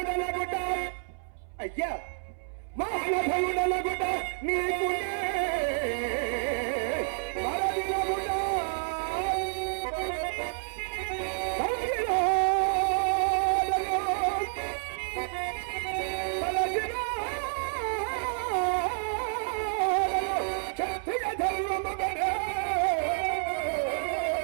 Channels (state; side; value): silent; left; 58 dB below the other